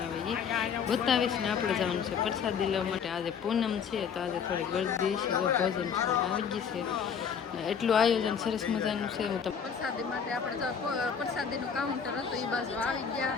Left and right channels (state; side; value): quieter; right; 6.9 dB